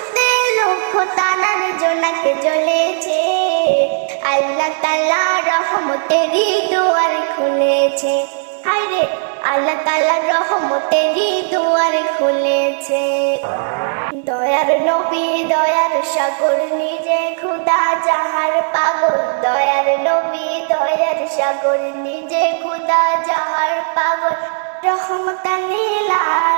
লক্ষ তারার জোনাকে জ্বলেছে। আল্লাহ তাআলা রহমতেরই দুয়ার খুলেছে, হায়রে আল্লাহ তাআলা রহমতেরই দুয়ার খুলেছে। দয়ার নবী দয়ার সাগর নিজে খোদা যাহার পাগল, দয়ার নবী দয়ার সাগর নিজে খোদা যাহার পাগল। রহমতান লিল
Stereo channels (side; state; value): left; silent; digital silence